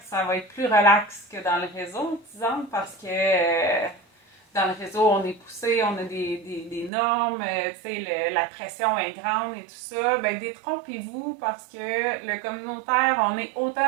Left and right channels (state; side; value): drops out; left; at 6.9 s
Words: ça va être plus relax que dans le réseau, disons, parce que dans le réseau, on est poussé, on a des normes, la pression est grande et tout ça. Détrompez-vous parce que le communautaire, on est